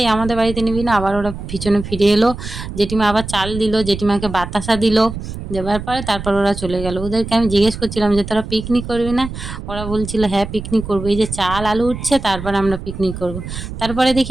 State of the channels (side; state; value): right; noise; rumble, 9 dB below the sound